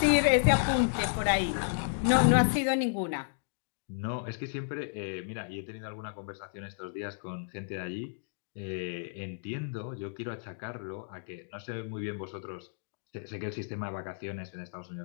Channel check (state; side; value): silent; right; digital silence